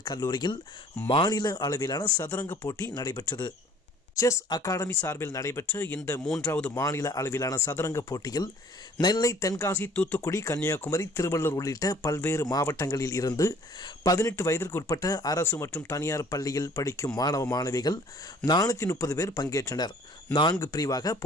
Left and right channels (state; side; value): normal; both; correlation 0.54